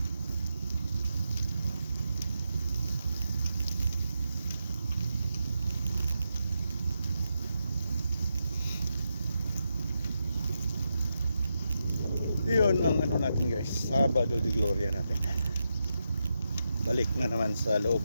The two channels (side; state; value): both; inverted; correlation -0.86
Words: Yun ang ano natin guys, Sabado de Gloria natin. Balik na naman sa loob